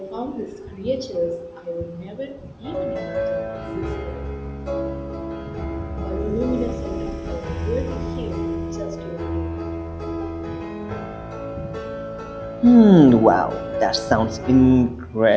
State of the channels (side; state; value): both; identical; correlation 1.00